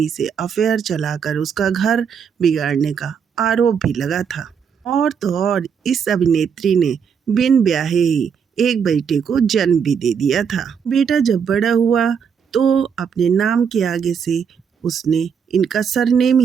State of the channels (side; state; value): left; quieter; 7.0 dB